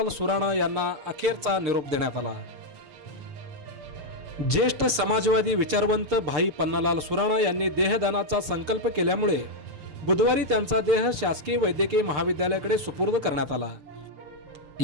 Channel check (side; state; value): left; late; 6.6 ms